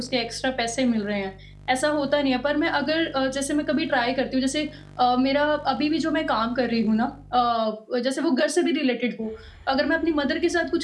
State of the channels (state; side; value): identical; both; correlation 1.00